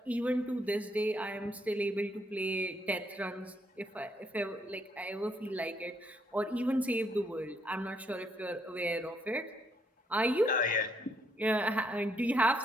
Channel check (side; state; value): both; normal; correlation 0.73